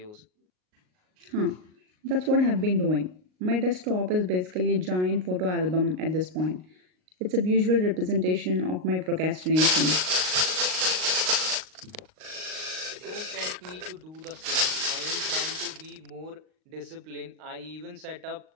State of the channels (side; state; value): left; late; 38 ms